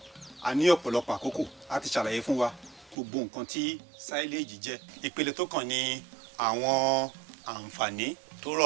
a ní ọ̀pọ̀lọpọ̀ àkókò láti ṣàlàyé fún wa gbogbo nǹkan tí sáíléèjì jẹ́. ìpele tó kàn ní àwọn àǹfààní tó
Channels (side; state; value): left; drops out; at 3.0 s